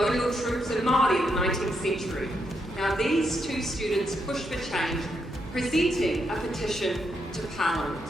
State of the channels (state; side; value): normal; both; correlation 0.80